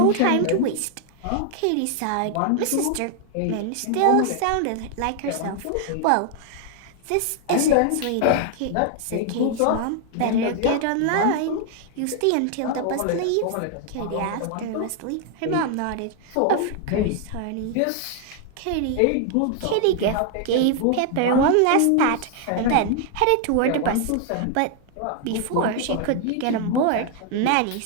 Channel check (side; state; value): both; different; correlation 0.00